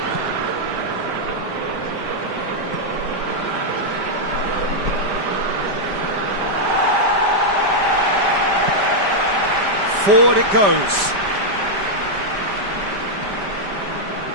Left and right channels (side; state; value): left; late; 5.1 ms